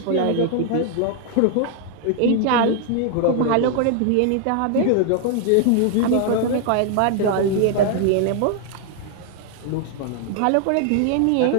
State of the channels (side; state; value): both; different; correlation 0.00